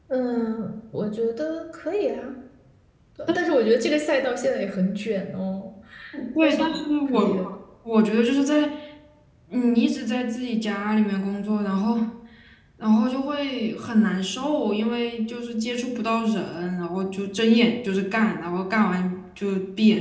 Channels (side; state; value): both; identical; correlation 1.00